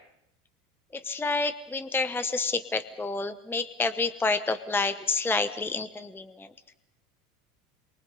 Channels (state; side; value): quieter; right; 3.4 dB